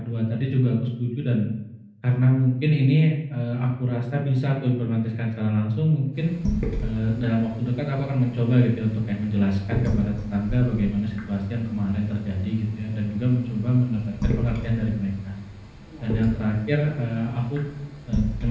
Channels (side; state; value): both; identical; correlation 1.00